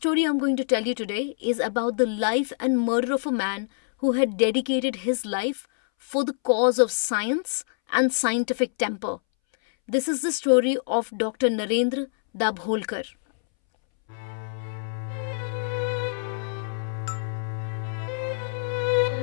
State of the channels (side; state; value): right; silent; 61 dB below the other